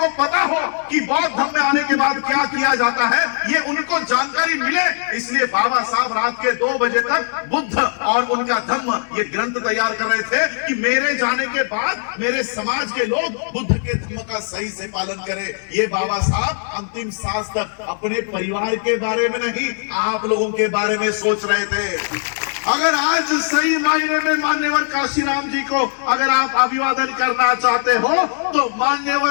पता हो कि बौद्ध धर्म में आने के बाद क्या किया जाता है, ये उनको जानकारी मिले। इसलिए बाबा साहब रात के 2 बजे तक बुद्ध और उनका धर्म ये ग्रंथ तैयार कर रहे थे कि मेरे जाने के बाद मेरे समाज के लोग बुद्ध के धर्म का सही से पालन करें। ये बाबा साहब अंतिम सांस तक अपने परिवार के बारे में नहीं, आप लोगों के बारे में सोच रहे थे। अगर आज सही मायने में मान्यवर काशीराम जी को अगर आप अभिवादन करना चाहते हो तो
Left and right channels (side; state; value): right; silent; 61 dB below the other